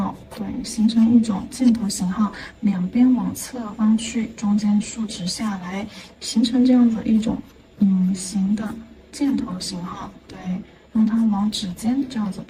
对，形成一种箭头型号，两边往侧方去，中间竖直下来，形成这样子一种隐形的箭头型号，对，让它往指尖这样子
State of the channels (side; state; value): both; identical; correlation 1.00